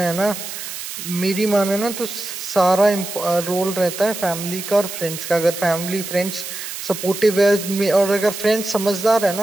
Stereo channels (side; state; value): right; noise; hiss, 8 dB below the sound